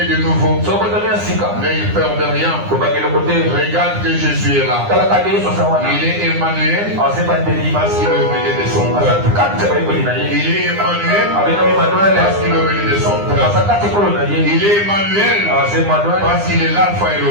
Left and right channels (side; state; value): left; late; 9.8 ms